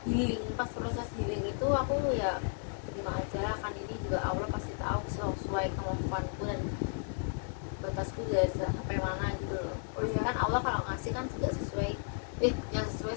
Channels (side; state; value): right; silent; digital silence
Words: healing. Pas proses healing itu aku ya terima aja lah, kan ini juga Allah pasti tahu sesuai kemampuanku dan batasku juga sampai mana gitu loh. Oh, Pasti iya. kan Allah kalau ngasih kan juga sesuai yang sesuai